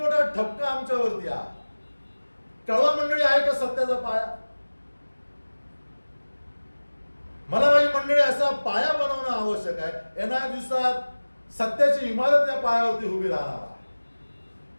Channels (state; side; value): inverted; both; correlation -1.00